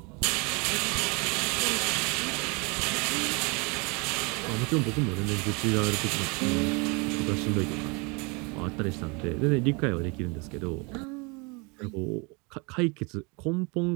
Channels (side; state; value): left; quieter; 30.0 dB